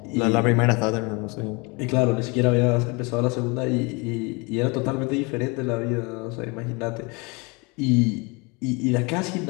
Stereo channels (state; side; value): quieter; right; 28.7 dB